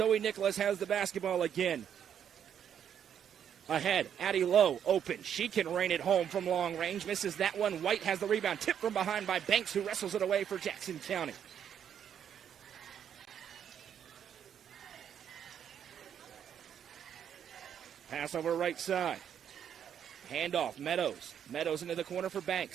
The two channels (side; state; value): left; quieter; 8.9 dB